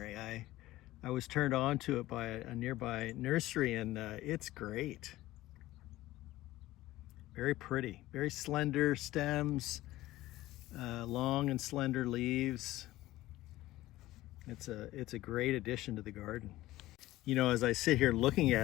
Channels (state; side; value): quieter; right; 16.6 dB